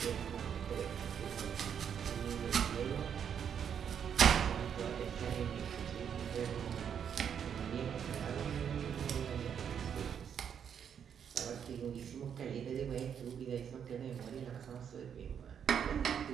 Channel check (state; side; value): quieter; left; 8.0 dB